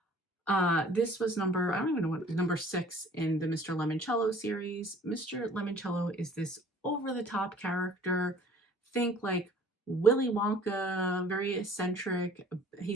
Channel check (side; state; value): both; normal; correlation 0.53